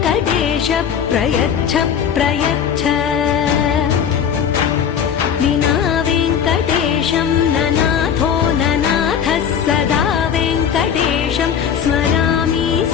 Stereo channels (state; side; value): quieter; right; 8.0 dB